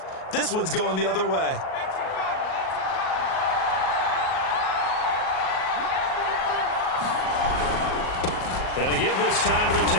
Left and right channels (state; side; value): late; right; 38 ms